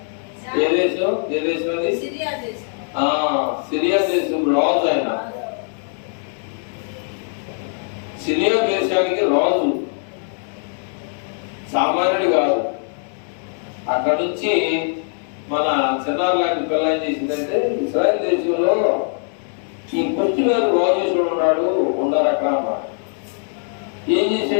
ఏ దేశం? ఏ దేశం అది? సిరియా దేశం రాజు ఆయన. సిరియా దేశానికి రాజు, సామాన్యుడు కాదు. అక్కడ నుంచి మన చిన్నారు లాంటి పిల్ల ఏం చేసిందంటే, ఇస్రాయల్ దేశంలో ఈ కొచ్చి గారు రాజేశ్వరుడు ఉన్నారు అక్కడ అన్నమాట. ఏం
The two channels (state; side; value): silent; right; 59 dB below the other